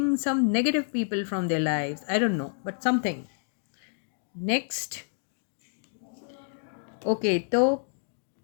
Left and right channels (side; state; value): right; silent; digital silence